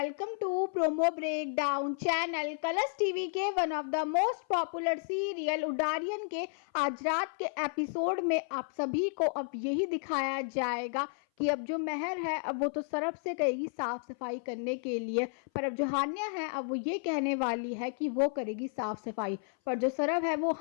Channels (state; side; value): silent; right; 56 dB below the other